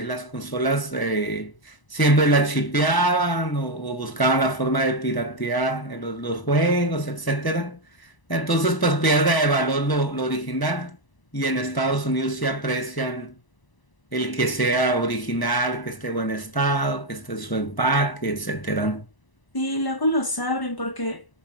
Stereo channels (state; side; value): late; right; 1.0 ms